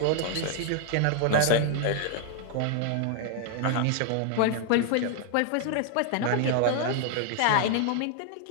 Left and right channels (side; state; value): both; different; correlation 0.00